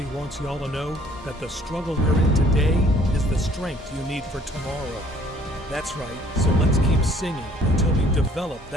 wants y'all to know that the struggle you're in today is the strength you need for tomorrow. That's right, so let's keep singing until we develop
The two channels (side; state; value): both; normal; correlation 0.57